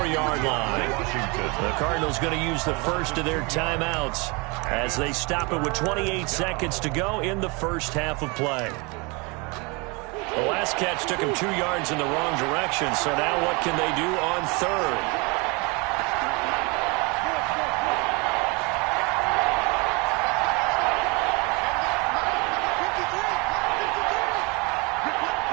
line. The Cardinals going to use the first of their timeouts as they stop it with 28 seconds to go in the first half of play. The last catch took him 2 yards in the wrong direction, so now what can they do on third?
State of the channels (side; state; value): left; quieter; 28.6 dB